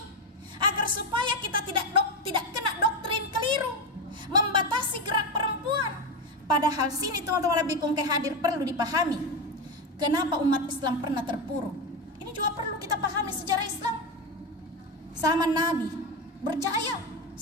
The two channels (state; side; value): normal; both; correlation 0.14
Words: agar supaya kita tidak kena doktrin keliru membatasi gerak perempuan. Padahal sini teman-teman lebih hadir perlu dipahami. Kenapa umat Islam pernah terpuruk? Ini juga perlu kita pahami sejarah Islam. Zaman Nabi berjaya